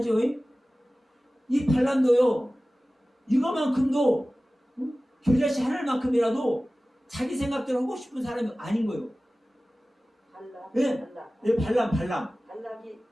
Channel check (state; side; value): normal; both; correlation 0.97